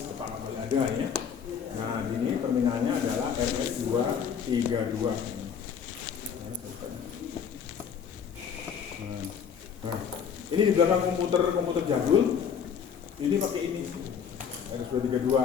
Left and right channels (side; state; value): right; quieter; 7.4 dB